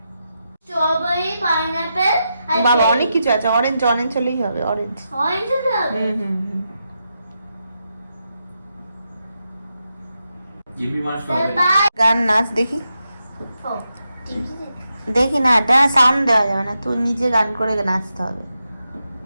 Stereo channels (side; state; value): both; inverted; correlation -0.86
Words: স্ট্রবেরি, পাইনাপেল আর বাবা অনেক কিছু আছে। অরেঞ্জ অরেঞ্জ হলেই হবে, অরেঞ্জ। অরেঞ্জ হবে। হুম। গান নাচ দেখি। দেখি না, এটা সাউন্ড দেওয়া যাবে না, তুই নিজে গান করে নাচতে হবে।